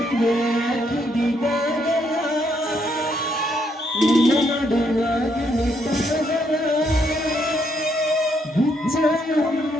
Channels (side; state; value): both; normal; correlation 0.73